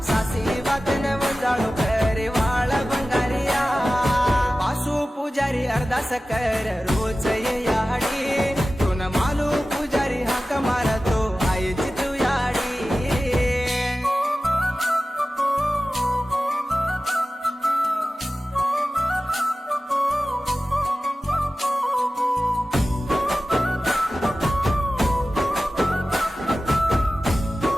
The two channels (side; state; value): both; normal; correlation 0.95